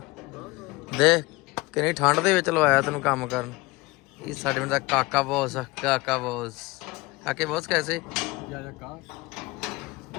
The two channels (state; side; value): quieter; right; 22.1 dB